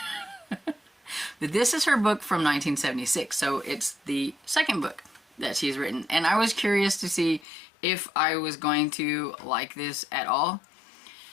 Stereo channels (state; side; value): drops out; right; at 7.5 s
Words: But this is her book from 1976, so it's the second book that she's written. And I was curious to see if I was going to like this at all,